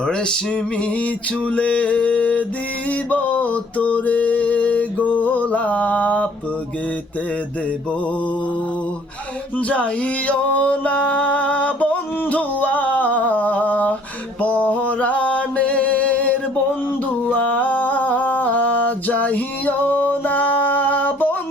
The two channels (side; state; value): both; normal; correlation 0.58